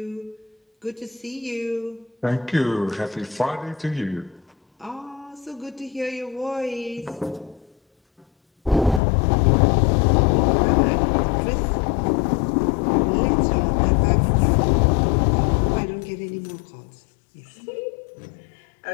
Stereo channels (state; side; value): drops out; right; at 9.0 s